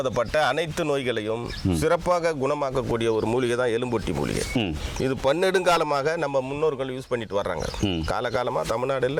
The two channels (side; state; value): both; identical; correlation 1.00